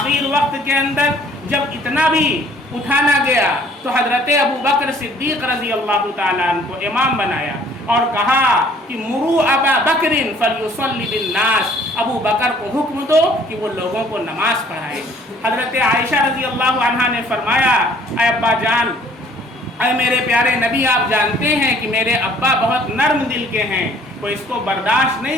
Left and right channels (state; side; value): normal; both; correlation 0.57